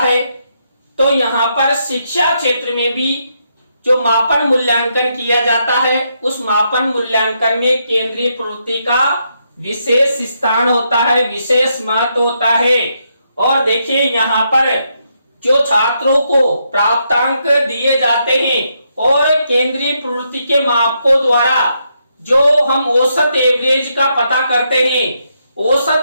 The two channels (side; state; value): both; inverted; correlation -0.79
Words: तो यहाँ पर शिक्षा क्षेत्र में भी जो मापन मूल्यांकन किया जाता है, उस मापन मूल्यांकन में केंद्रीय प्रवृत्ति का विशेष स्थान होता है, विशेष महत्व होता है। और देखिए, यहाँ पर जो छात्रों को प्राप्तांक दिए जाते हैं और केंद्रीय प्रवृत्ति के मापकों द्वारा जो हम औसत एवरेज का पता करते हैं,